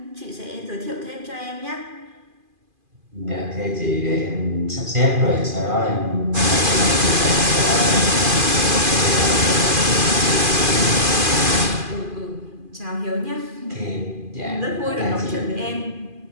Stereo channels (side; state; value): left; late; 2.5 ms